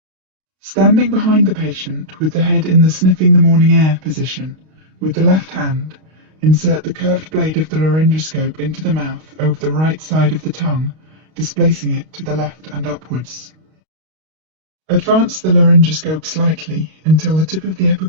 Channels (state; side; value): late; left; 32 ms